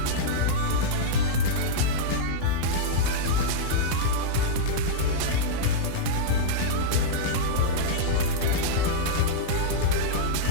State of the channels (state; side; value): different; both; correlation -0.02